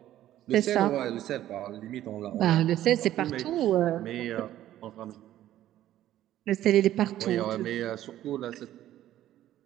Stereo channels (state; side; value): quieter; left; 13.0 dB